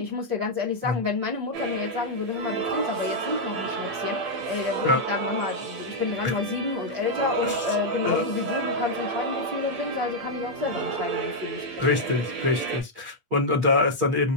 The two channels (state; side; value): late; left; 8.5 ms